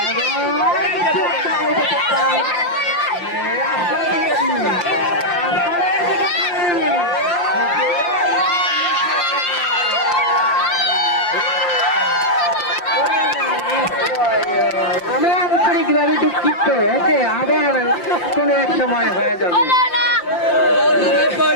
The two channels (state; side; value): late; right; 5.7 ms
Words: আমি আন্তরিকভাবে দুঃখিত ওকে আবার কোনো এক সময় হয়ে যাবে